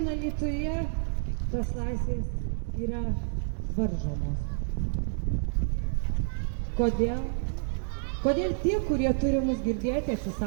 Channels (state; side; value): silent; left; digital silence